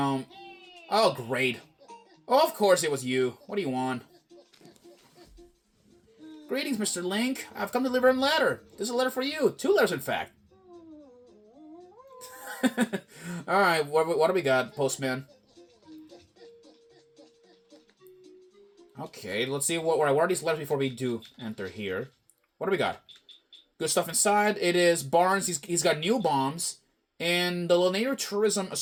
Oh, great. Oh, of course it was you. What do you want? Greetings, Mr. Link. I've come to deliver a letter. This is a letter for you. 2 letters, in fact. All right. What do we got, Postman? Okay, let's see what are these letters before we do enter here. What do we got? Good stuff inside. It is Barnes. He's got new bombs. And the Lanier Tourism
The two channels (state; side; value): identical; both; correlation 1.00